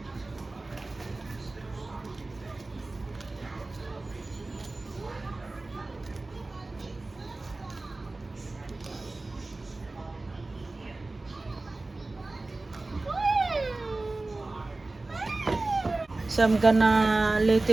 So I'm gonna let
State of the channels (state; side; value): quieter; left; 3.1 dB